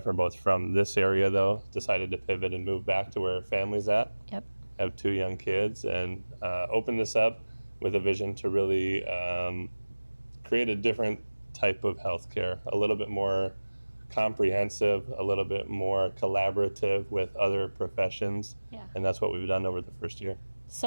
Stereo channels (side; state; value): both; inverted; correlation -1.00